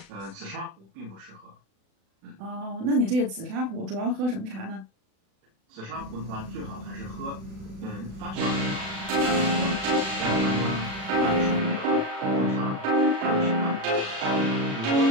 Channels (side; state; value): left; late; 36 ms